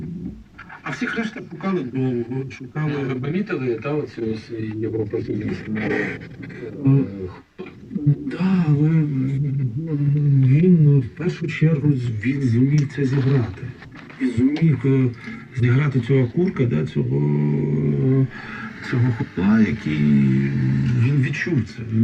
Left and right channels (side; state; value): both; identical; correlation 1.00